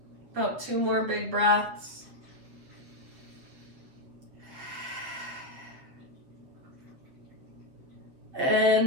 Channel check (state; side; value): late; left; 7.6 ms